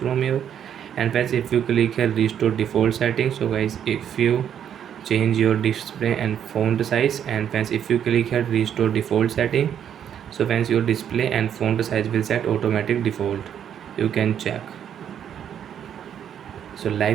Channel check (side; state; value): left; quieter; 9.1 dB